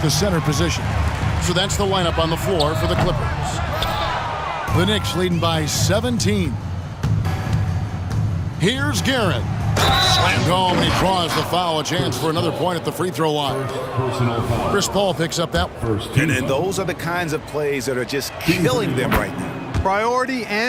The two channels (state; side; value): identical; both; correlation 1.00